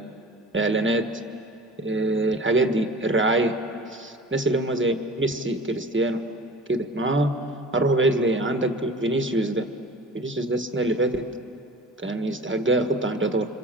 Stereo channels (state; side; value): normal; both; correlation 0.40